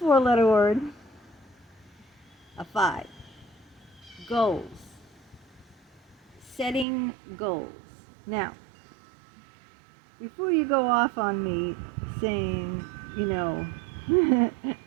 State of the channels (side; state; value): left; drops out; at 6.9 s